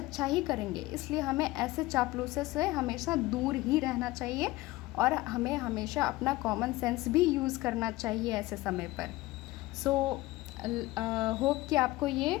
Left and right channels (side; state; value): right; quieter; 19.1 dB